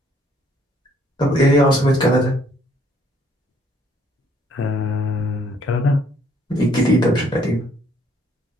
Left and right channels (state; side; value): normal; both; correlation 0.64